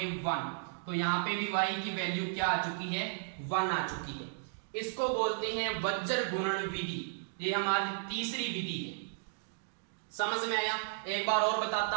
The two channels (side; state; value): left; silent; digital silence